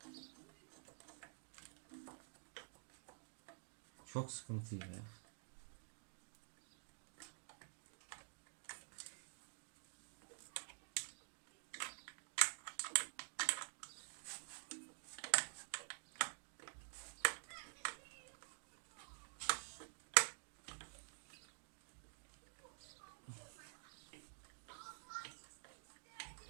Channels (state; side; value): silent; left; digital silence